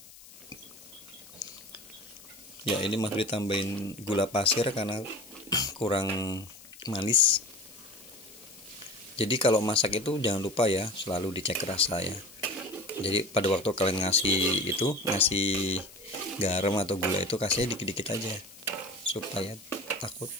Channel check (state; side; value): noise; left; hiss, 20 dB below the sound